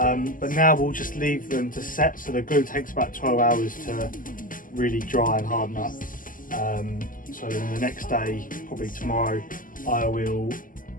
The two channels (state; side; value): late; right; 0.39 ms